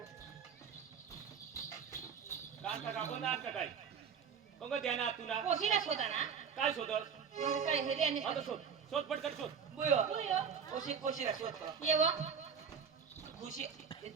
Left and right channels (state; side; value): quieter; left; 6.8 dB